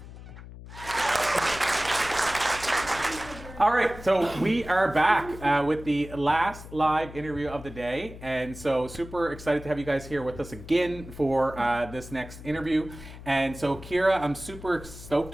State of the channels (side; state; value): left; noise; hum, 15 dB below the sound